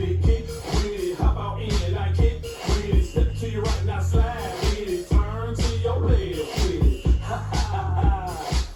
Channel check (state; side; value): identical; both; correlation 1.00